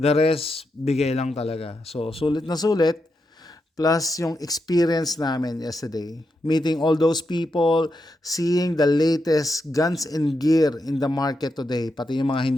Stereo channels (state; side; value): normal; both; correlation 0.85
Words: rest, bigay lang talaga. So, sulit na sulit. Plus, yung experience namin yesterday. Meeting all those people, seeing the latest guns and gear in the market today. Pati yung mga